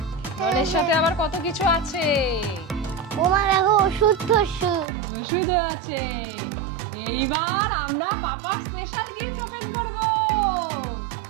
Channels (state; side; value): drops out; left; at 4.9 s